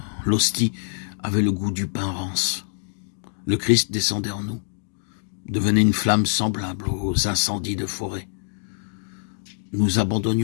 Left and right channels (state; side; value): silent; right; 62 dB below the other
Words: l'hostie avait le goût du pain rance. Le Christ descendait en nous, devenait une flamme semblable aux incendies de forêt. Nous